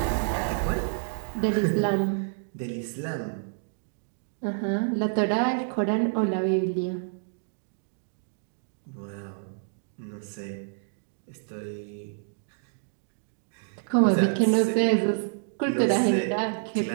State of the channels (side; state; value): left; silent; digital silence